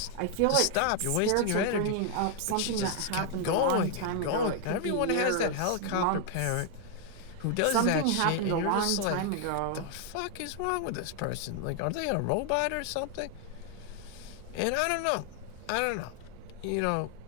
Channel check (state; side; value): different; both; correlation 0.00